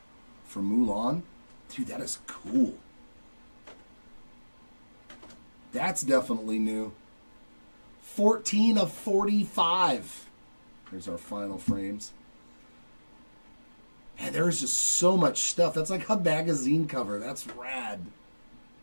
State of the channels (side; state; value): both; inverted; correlation -1.00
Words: for Mulan. Dude, that is cool. That's definitely new. 14 of 45. Here's our final frames. Man, there is just so much stuff. That's like a magazine cover. That's rad.